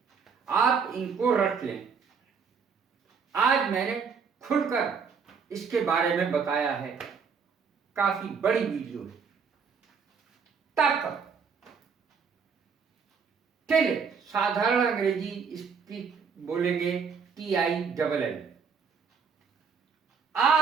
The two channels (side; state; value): left; quieter; 6.0 dB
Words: आप इनको रट लें। आज मैंने खुलकर इसके बारे में बताया है। काफी बड़ी वीडियो है। तक, टिल, साधारण अंग्रेजी इसकी बोलेंगे TILL।